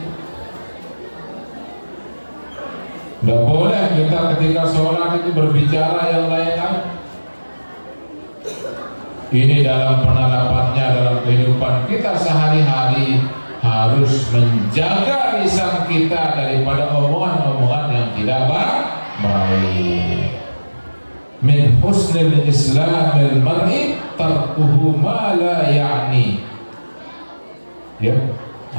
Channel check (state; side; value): inverted; both; correlation -1.00